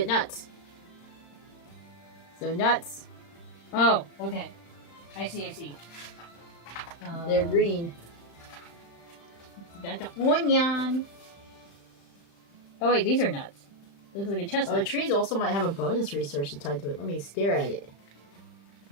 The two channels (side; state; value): right; late; 35 ms